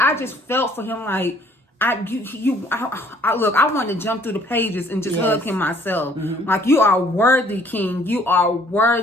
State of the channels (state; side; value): normal; both; correlation 0.59